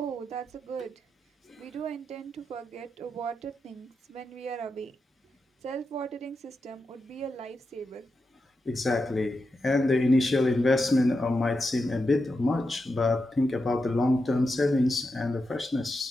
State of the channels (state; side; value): normal; both; correlation 0.88